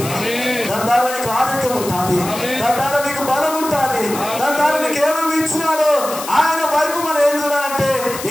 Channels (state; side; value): noise; left; hiss, 10 dB below the sound